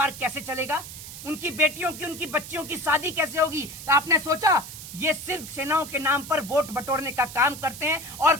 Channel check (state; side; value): noise; right; hiss, 12 dB below the sound